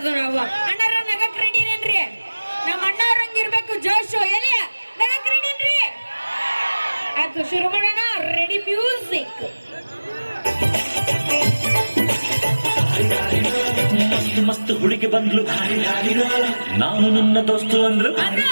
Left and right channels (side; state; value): both; inverted; correlation -1.00